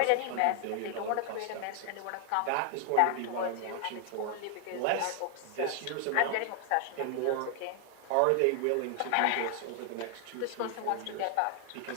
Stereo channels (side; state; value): both; different; correlation 0.00